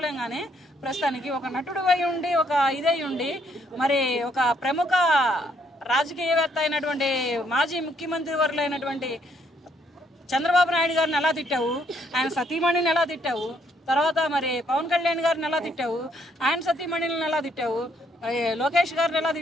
గానీ, ప్రస్తుతానికి ఒక నటుడు అయి ఉండి, ఒక ఇదై ఉండి, మరి ఒక ప్రముఖ రాజకీయవేత్త అయినటువంటి మాజీ ముఖ్యమంత్రి వర్యులైనటువంటి చంద్రబాబు నాయుడు గారిని ఎలా తిట్టావు, ఆయన సతీమణిని ఎలా తిట్టావు, తర్వాత మరి పవన్ కళ్యాణ్ గారిని ఎలా తిట్టావు, ఆయన సతీమణిని ఎలా తిట్టావు, లోకేష్ గారిని ఎలా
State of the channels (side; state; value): both; normal; correlation 0.70